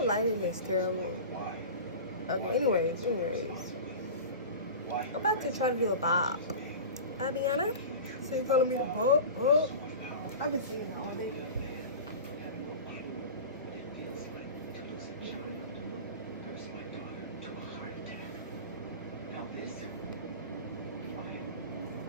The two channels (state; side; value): inverted; both; correlation -0.32